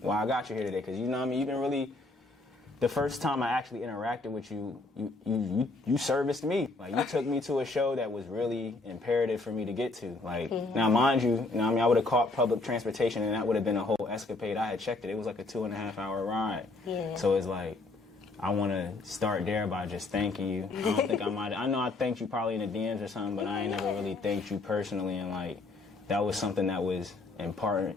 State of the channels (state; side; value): quieter; right; 3.2 dB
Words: I got you here today because, you know what I mean, you've been really, the first time I actually interacted with you, you serviced me. Like, you took me to a show that was really imperative for me to get to. Like, now, mind you, you know what I mean, I would have caught public transportation and that would have been a whole escapade. I had checked it. It was like a 2.5-hour ride. Yeah. So it's like, I want to start there by just thanking you. I don't think I know I thanked you probably in the DMs or something, but I ain't never really thanked you personally. And, like, that was something that was